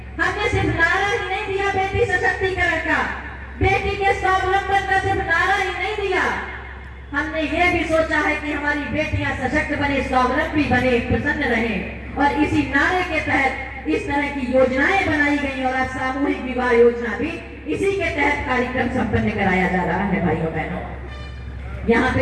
हमने सिर्फ नारा ही नहीं दिया बेटी सशक्तिकरण का, बेटी के स्वावलंबन का सिर्फ नारा ही नहीं दिया, हमने ये भी सोचा है कि हमारी बेटियां सशक्त बने, स्वावलंबी बने, प्रसन्न रहें। और इसी नारे के तहत इस तरह की योजनाएं बनाई गई और आज सामूहिक विवाह योजना भी इसी के तहत कार्यक्रम संपन्न कराया जा रहा है। भाइयों बहनों, यहाँ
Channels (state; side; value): identical; both; correlation 1.00